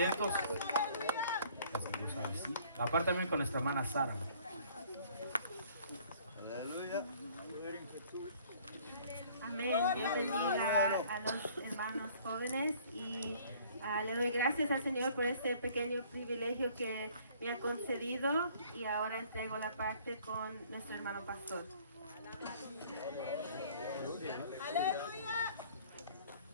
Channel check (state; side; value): inverted; both; correlation -0.56